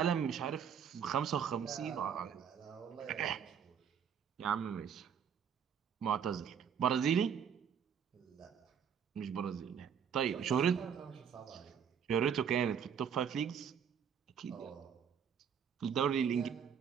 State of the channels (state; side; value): quieter; left; 7.8 dB